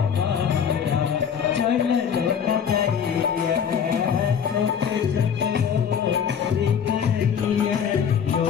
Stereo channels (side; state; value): right; quieter; 7.6 dB